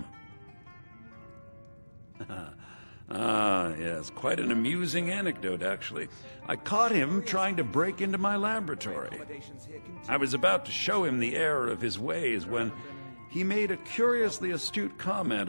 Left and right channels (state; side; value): inverted; both; correlation -1.00